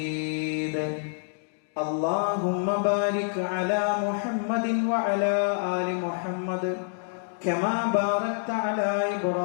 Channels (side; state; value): right; silent; digital silence